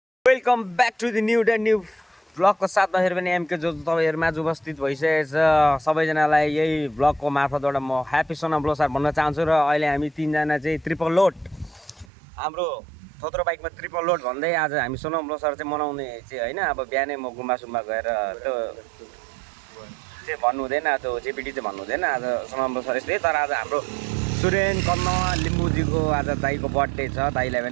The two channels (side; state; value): left; drops out; at 12.1 s